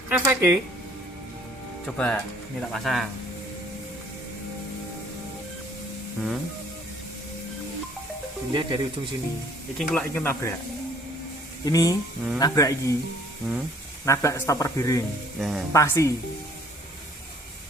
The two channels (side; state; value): both; normal; correlation 0.58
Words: Efeknya. Coba ini tak pasang. Dilihat dari ujung sini. Iki nabrak. Ini nabrak iki. Nabrak stopper biring. Pasti.